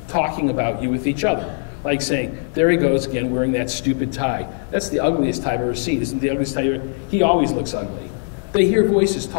talking about you with each other. Like saying, "There he goes again wearing that stupid tie. That's the ugliest tie I've ever seen. Isn't the ugliest tie ever? He always looks ugly." They hear voices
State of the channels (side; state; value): right; silent; 65 dB below the other